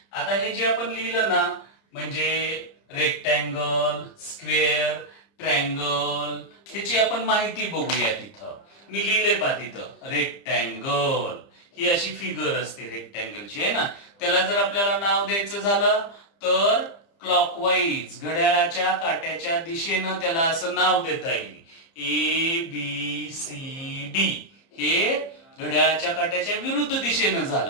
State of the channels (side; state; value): right; late; 30 ms